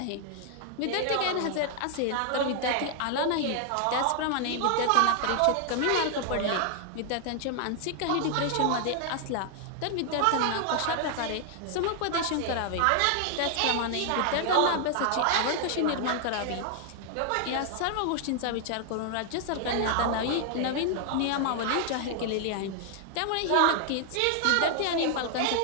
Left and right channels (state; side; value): different; both; correlation 0.00